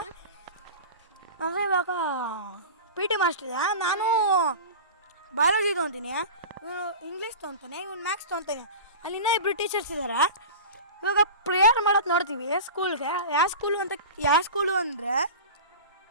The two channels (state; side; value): inverted; both; correlation -0.33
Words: ಅಂದರೆ ಇವಾಗ ಪಿ ಟಿ ಮಾಸ್ಟ್ರ್ ಇದೆ. ನಾನು ಬಯಾಲಜಿ ತೊಗೊತೀನಿ, ಇವನು ಇಂಗ್ಲೀಷ್ ತೊಗೊತಾನೆ, ಇವನು ಮ್ಯಾಥ್ಸ್ ತೊಗೊತಾನೆ. ಅಲ್ಲಿ ಇನ್ನೂ 2 ಟೀಚರ್ಸ್ ಇದ್ದಾರೆ. ಇವಾಗ ಪ್ರೇಯರ್ ಮಾಡೋದು ನೋಡ್ತೀವಿ ಸ್ಕೂಲ್ಗೆ. ಯಾವ ಸ್ಕೂಲು ಅಂದರೆ